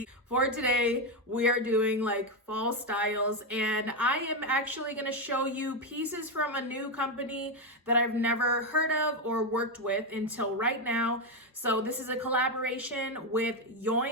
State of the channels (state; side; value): normal; both; correlation 0.07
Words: For today, we are doing like fall styles, and I am actually going to show you pieces from a new company that I've never heard of or worked with until right now. So this is a collaboration with